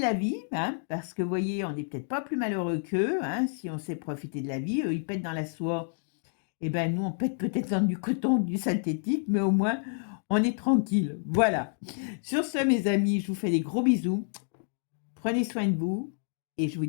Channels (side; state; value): right; silent; digital silence